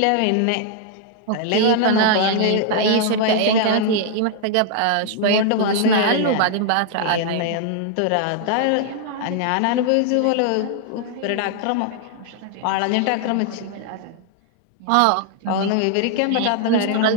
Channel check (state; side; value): different; both; correlation 0.00